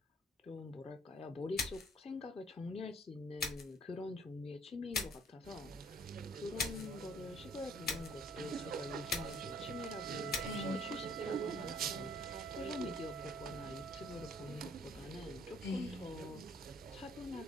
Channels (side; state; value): both; normal; correlation 0.59